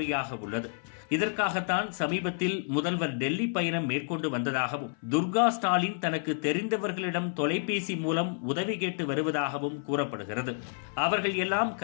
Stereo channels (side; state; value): right; silent; 57 dB below the other